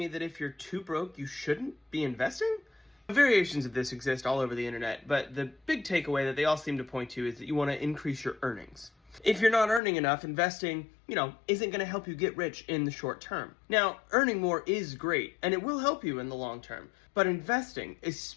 that if you're too broke, you shouldn't be investing? Variations of this exist all over the internet, but the big takeaway that they all seem to point to is that you want to increase your earnings. If you're not earning enough, investing, isn't going to help you get rich in the short term. Now, earning more is great, and it will help you in the long term. But investing,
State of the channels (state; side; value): drops out; right; at 9.8 s